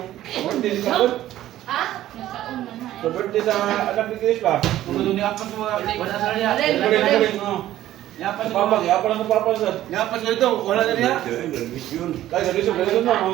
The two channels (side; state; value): left; quieter; 13.7 dB